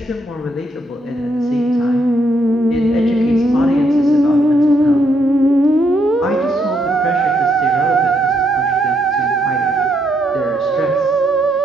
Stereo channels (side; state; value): both; normal; correlation 0.75